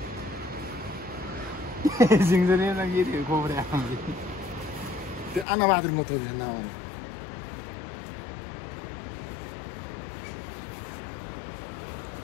सिङ्सुरले लगी खोबरे त्यो अनबहादुर को थियो न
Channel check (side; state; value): right; drops out; at 5.5 s